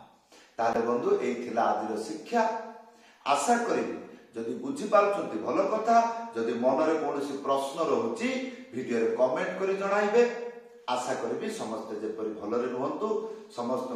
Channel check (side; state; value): both; identical; correlation 1.00